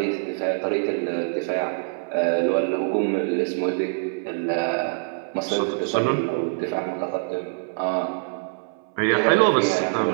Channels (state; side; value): silent; left; 61 dB below the other